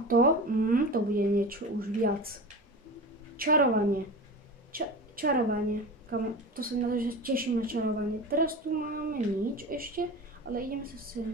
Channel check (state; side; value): normal; both; correlation 0.30